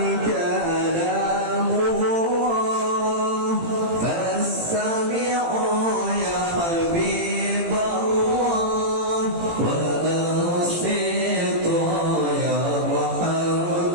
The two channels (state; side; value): late; left; 18 ms